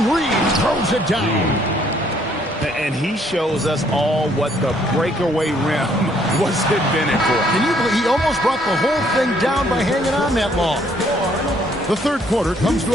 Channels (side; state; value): both; normal; correlation 0.66